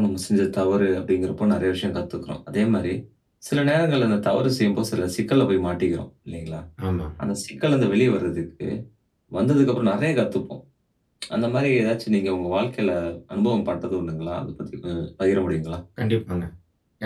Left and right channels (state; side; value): identical; both; correlation 1.00